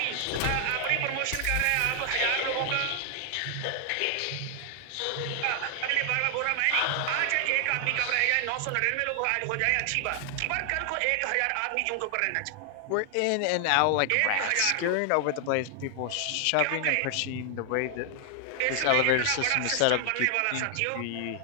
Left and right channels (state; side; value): different; both; correlation 0.00